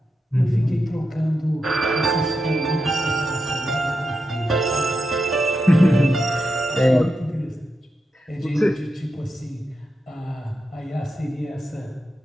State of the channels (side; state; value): both; normal; correlation 0.87